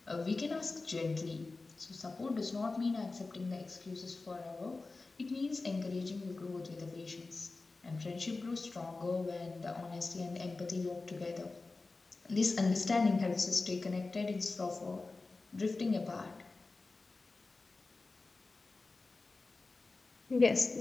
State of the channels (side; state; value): right; quieter; 3.6 dB